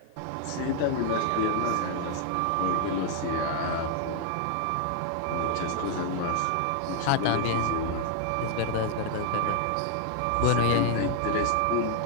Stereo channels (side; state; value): both; different; correlation 0.00